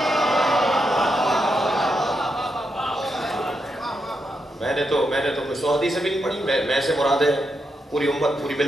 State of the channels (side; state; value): both; normal; correlation 0.83